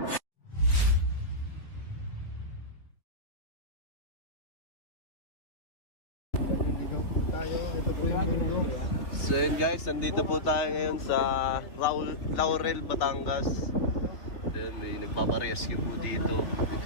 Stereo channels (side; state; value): right; late; 3.6 ms